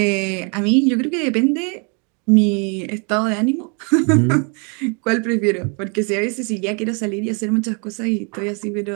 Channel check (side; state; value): left; quieter; 35.6 dB